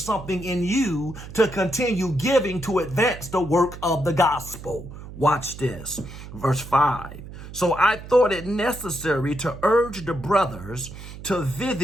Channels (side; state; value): right; noise; hum, 13 dB below the sound